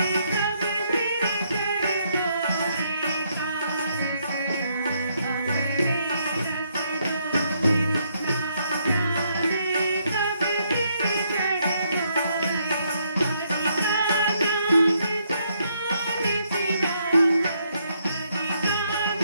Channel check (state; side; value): inverted; both; correlation -0.73